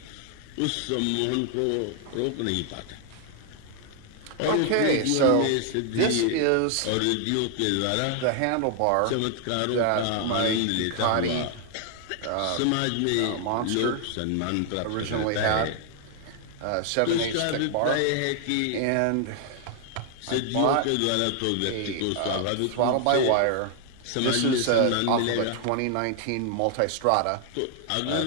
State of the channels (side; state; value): both; different; correlation 0.00